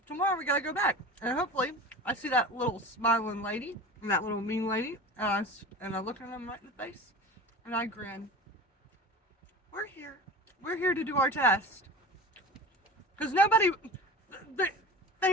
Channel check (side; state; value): both; normal; correlation 0.34